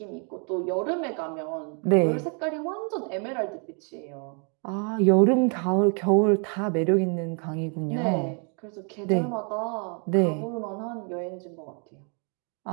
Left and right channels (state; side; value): quieter; left; 38.8 dB